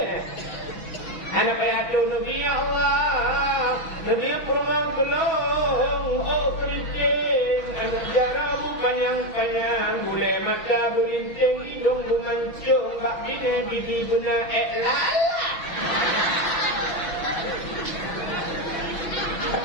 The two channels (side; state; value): right; late; 6.0 ms